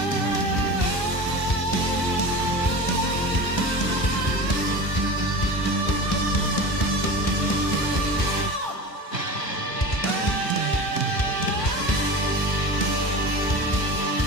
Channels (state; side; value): late; right; 1.4 ms